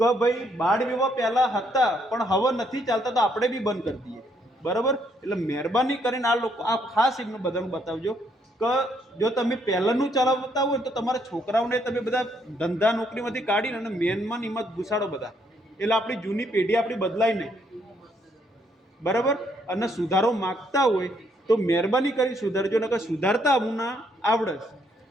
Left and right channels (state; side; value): normal; both; correlation 0.71